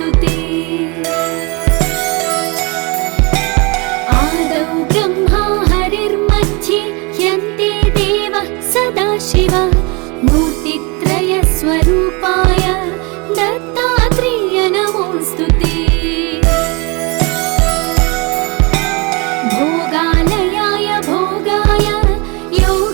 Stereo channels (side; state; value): left; quieter; 29.1 dB